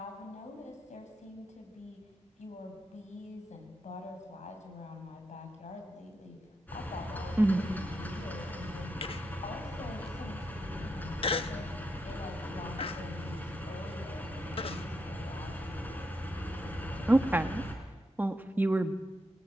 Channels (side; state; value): both; normal; correlation 0.83